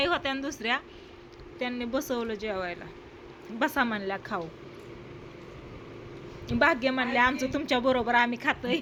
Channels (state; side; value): identical; both; correlation 1.00